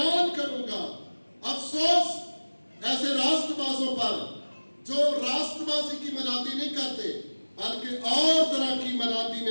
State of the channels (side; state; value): both; inverted; correlation -1.00